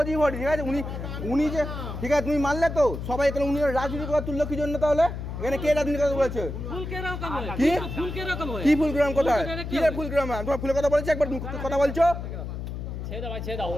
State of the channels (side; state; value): left; noise; hum, 6 dB below the sound